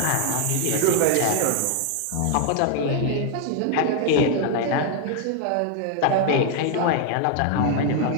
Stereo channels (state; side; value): different; both; correlation 0.00